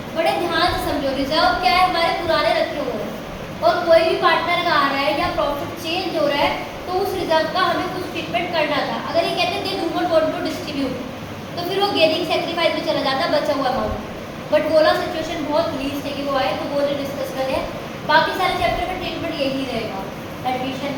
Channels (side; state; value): both; identical; correlation 1.00